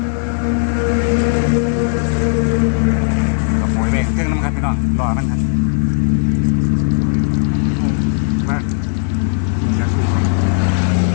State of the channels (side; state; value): right; silent; digital silence